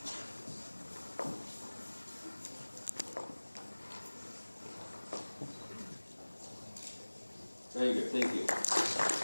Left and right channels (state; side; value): inverted; both; correlation -1.00